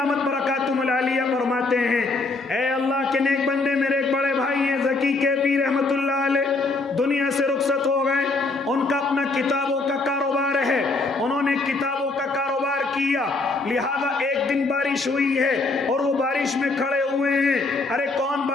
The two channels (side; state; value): right; quieter; 3.5 dB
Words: برکاتہم العالیہ فرماتے ہیں، اے اللہ کے نیک بندے، میرے ایک بڑے بھائی ہیں ذکی کیفی رحمت اللہ علیہ، دنیا سے رخصت ہو گئے۔ ان کا اپنا کتابوں کا کاروبار ہے، انہوں نے کتابوں کا کاروبار کیا، لہذا ایک دن بارش ہوئی ہے اور وہ بارش میں کھڑے ہوئے ہیں۔ ارے کون